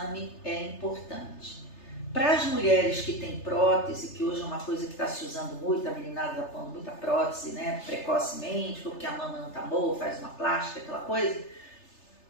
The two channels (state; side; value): late; right; 3.3 ms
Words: é importante. Para as mulheres que têm prótese, que hoje é uma coisa que está se usando muito, a meninada está pondo muita prótese, né, precocemente, porque a mama não está boa, faz uma plástica, aquela coisa,